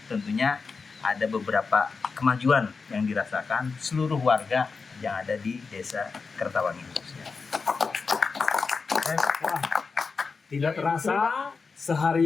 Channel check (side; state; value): right; quieter; 4.7 dB